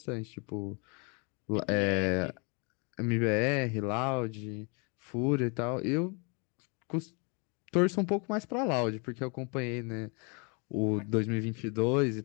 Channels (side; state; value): right; quieter; 33.9 dB